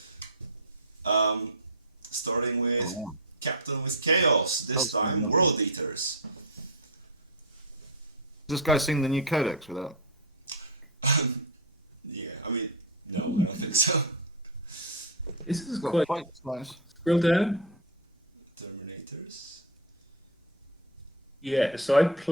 Starting with Captain with Chaos. This time, World Eaters. This guy sing the new codex without? Yeah, I mean, no, I don't think so. This is quite nice. Scroll down. Terminators. Yeah, so I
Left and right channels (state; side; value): normal; both; correlation 0.05